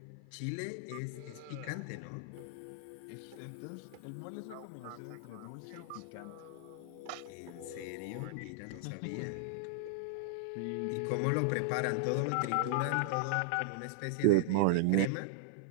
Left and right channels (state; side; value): different; both; correlation -0.01